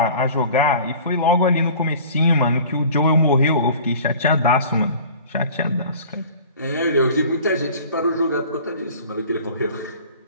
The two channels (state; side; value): inverted; both; correlation -0.44